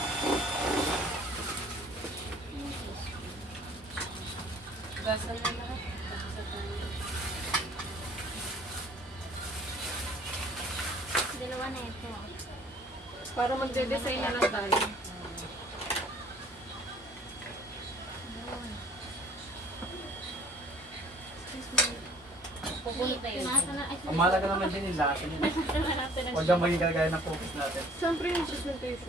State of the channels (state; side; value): normal; both; correlation 0.53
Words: Gasal na lahat. Dalawa na ito. Para magde-design na lang tayo. Pupunta yun. Ang mahalaga naman din yung lasa niya. Huwag kang maging kagaya ng focus natin. Siyempre yung